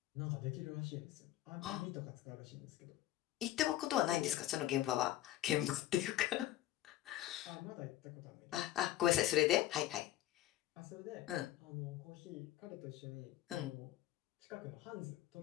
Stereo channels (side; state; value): right; quieter; 14.2 dB